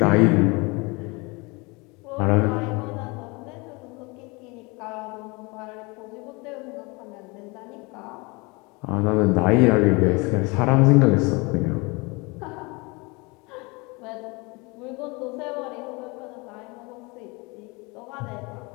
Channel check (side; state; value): right; quieter; 27.2 dB